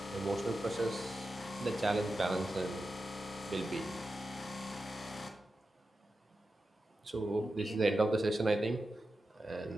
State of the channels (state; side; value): normal; both; correlation 0.91